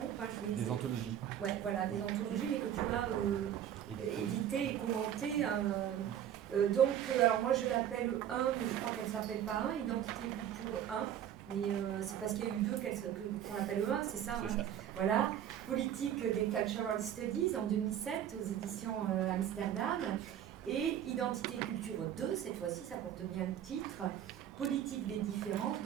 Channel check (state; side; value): quieter; left; 10.3 dB